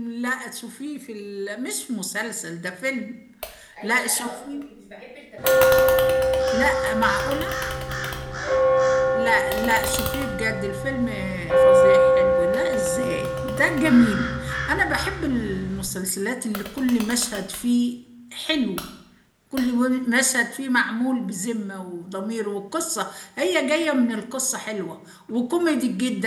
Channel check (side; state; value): both; identical; correlation 1.00